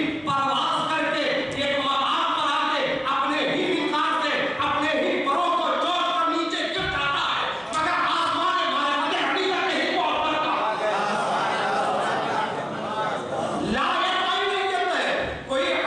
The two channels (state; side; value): identical; both; correlation 1.00